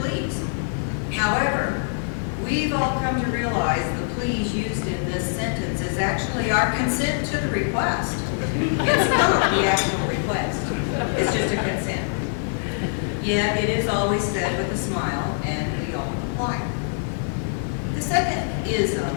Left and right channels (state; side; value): silent; right; 63 dB below the other